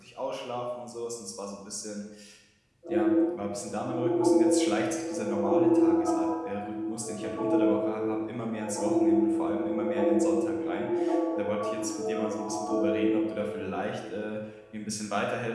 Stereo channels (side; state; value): both; identical; correlation 1.00